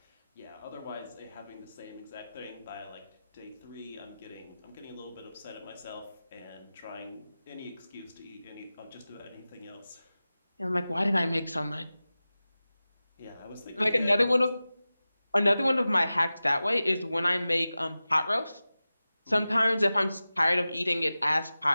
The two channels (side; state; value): both; inverted; correlation -0.96